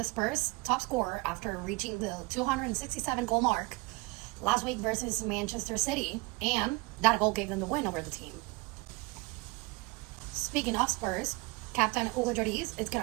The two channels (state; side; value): quieter; left; 24.9 dB